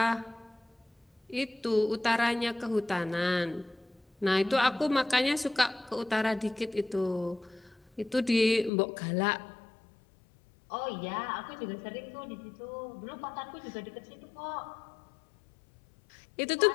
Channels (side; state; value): right; drops out; at 8.7 s